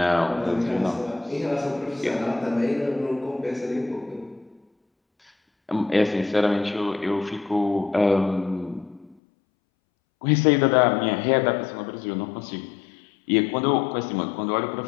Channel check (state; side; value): drops out; right; at 9.2 s